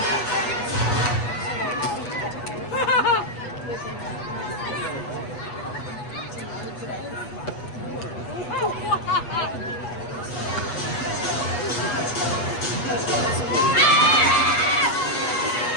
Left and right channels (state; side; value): late; right; 8.1 ms